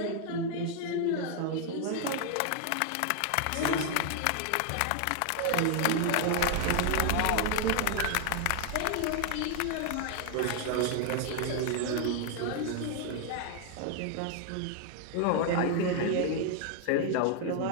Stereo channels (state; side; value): different; both; correlation 0.00